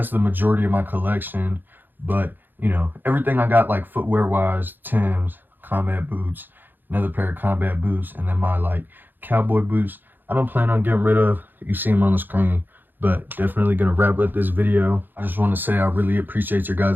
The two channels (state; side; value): late; left; 0.091 ms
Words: the majority of my collection. But you know, everything I got like footwear wise, Timbs, combat boots, another pair of combat boots, and then my like cowboy boots, I don't plan on getting rid of. You see them on the screen. But definitely gonna wrap up this video. I just want to say I really appreciate your